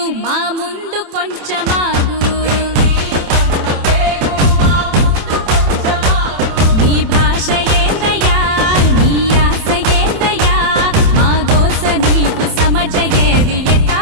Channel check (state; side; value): late; left; 27 ms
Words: మా ముందు కొంచెమాగు నీ భాష ఏందయ్యా నీ ఆశ ఏందయ్యా మా గోస నీకు సమజయేది ఎట్టా